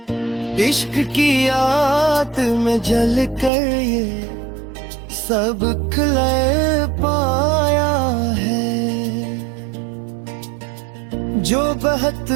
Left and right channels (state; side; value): drops out; left; at 3.5 s